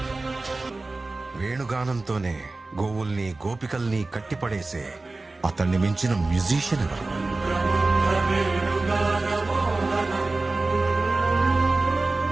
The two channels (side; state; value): left; quieter; 3.3 dB